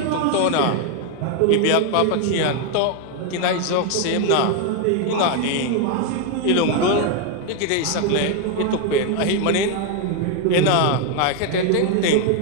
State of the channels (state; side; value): different; both; correlation 0.01